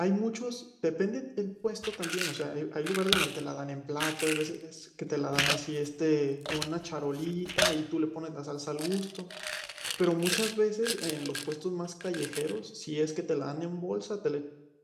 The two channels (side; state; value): both; identical; correlation 1.00